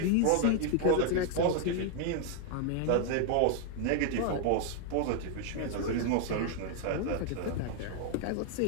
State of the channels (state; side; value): different; both; correlation 0.00